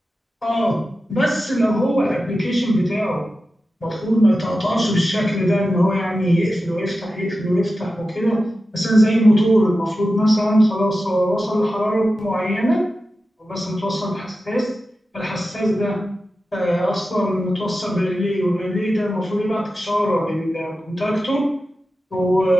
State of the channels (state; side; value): normal; both; correlation 0.93